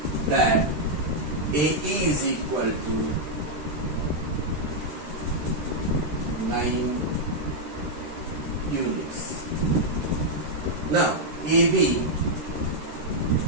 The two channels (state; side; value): late; left; 13 ms